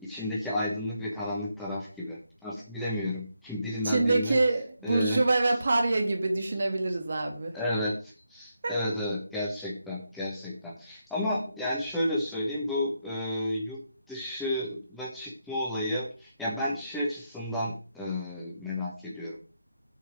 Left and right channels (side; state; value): both; inverted; correlation -0.80